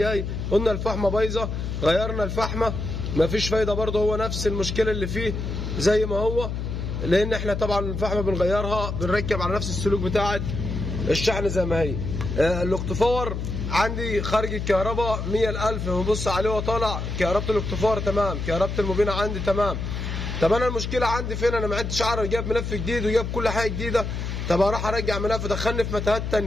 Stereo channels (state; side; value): noise; left; hum, 4 dB below the sound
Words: قلنا الفحمه بايظه، غيرنا الفحمه مفيش فايده برضه، هو نفس المشكله اللي فيه زي ما هو، لان احنا طبعا الفحمه بنغيرها، بنركب على نفس السلوك بتاعه الشحن زي ما هي. الاكتفاور عندي خارج الكهرباء 100,000، بنبص عليه وطالع كهربة الاكتفاور تمام، كهربة الموبينة عندي تمام. طب انا المشكله عندي فين؟ انا ما عدتش عارف، جايب ملف جديد وجايب كل حاجه جديده. طب اروح ارجع ملف دخلني في متاهات